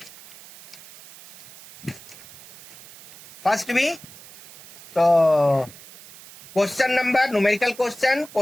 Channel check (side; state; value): right; noise; hiss, 20 dB below the sound